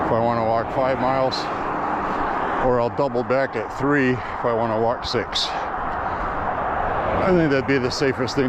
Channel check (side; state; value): both; identical; correlation 1.00